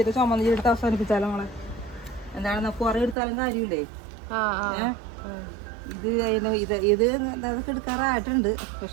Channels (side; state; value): left; drops out; at 3.2 s